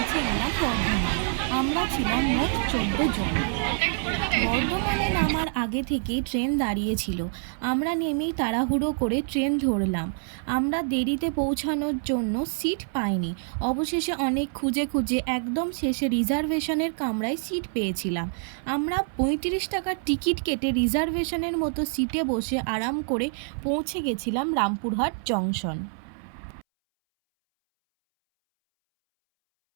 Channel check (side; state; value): left; silent; 61 dB below the other